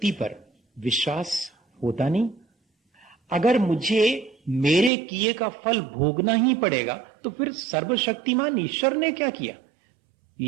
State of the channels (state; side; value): drops out; left; at 4.9 s